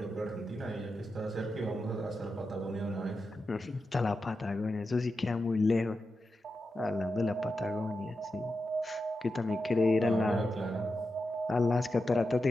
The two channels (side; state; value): both; normal; correlation 0.89